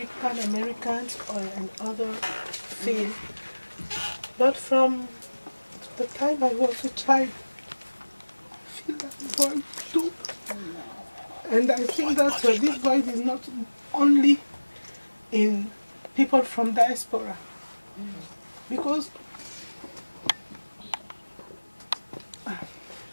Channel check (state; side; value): inverted; both; correlation -1.00